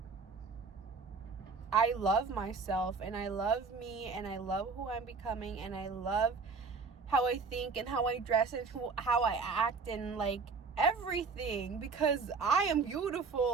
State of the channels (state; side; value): quieter; left; 4.7 dB